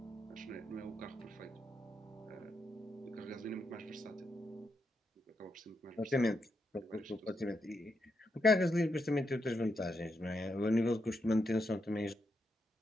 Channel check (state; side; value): normal; both; correlation 0.83